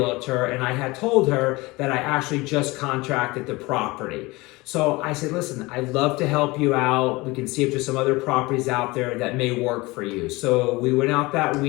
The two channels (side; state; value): right; quieter; 22.5 dB